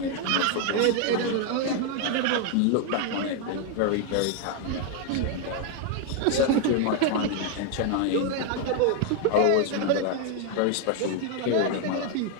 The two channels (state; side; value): different; both; correlation 0.00